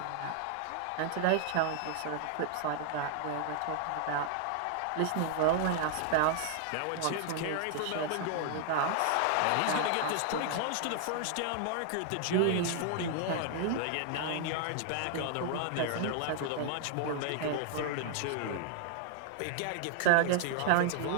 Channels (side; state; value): both; different; correlation -0.01